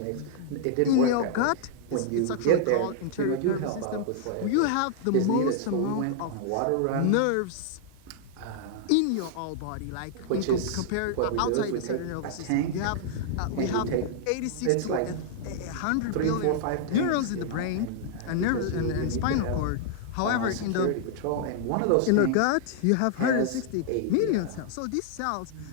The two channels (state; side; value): different; both; correlation -0.01